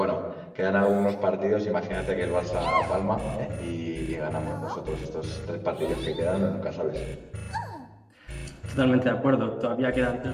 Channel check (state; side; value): identical; both; correlation 1.00